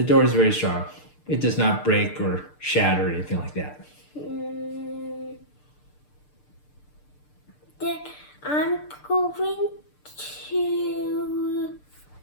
door is very strong. It does not break or shatter or anything like that. Then I'm going to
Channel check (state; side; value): late; right; 6.7 ms